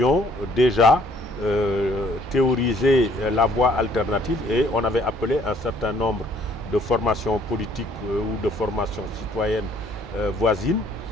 déjà théorisé la voie alternative et on avait appelé un certain nombre de formations politiques ou de formations citoyennes voisines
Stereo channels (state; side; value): normal; both; correlation 0.61